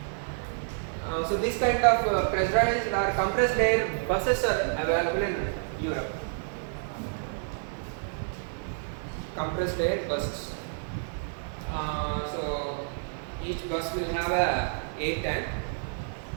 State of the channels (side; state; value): left; silent; digital silence